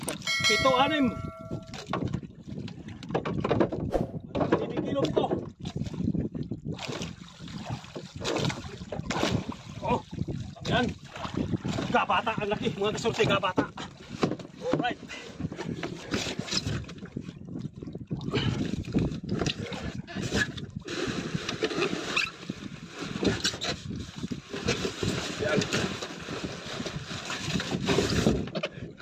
7-6. Ito. Oh, yan. Gabata ang laki, mga kasyerte, gabata. Alright. Yan.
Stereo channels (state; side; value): identical; both; correlation 1.00